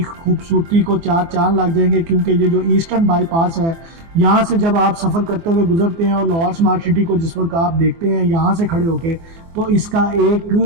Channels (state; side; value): late; left; 24 ms